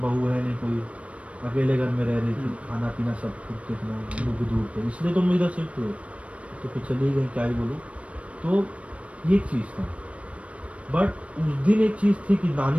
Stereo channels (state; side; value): late; left; 0.063 ms